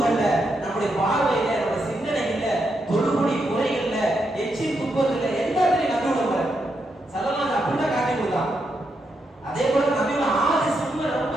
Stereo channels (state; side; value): normal; both; correlation 0.82